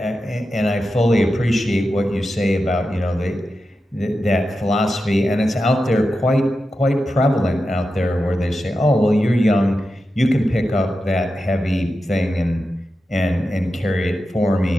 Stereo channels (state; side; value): normal; both; correlation 0.90